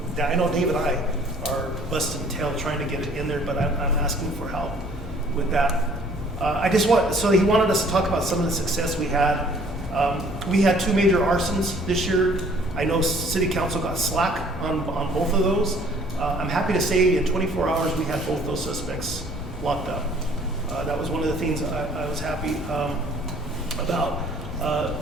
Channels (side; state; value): both; normal; correlation 0.56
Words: I know Dave and I are busting tail trying to get it in there, but I'm asking for help with that. So he wanted us to talk about some of the success we had. We had 2 major arsons this year. I know City Council got slack on both of those. I'm happy to say in 24 hours we had both those suspects locked up. That was one of the things I was happy about.